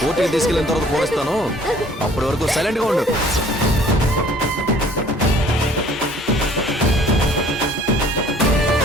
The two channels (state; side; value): normal; both; correlation 0.55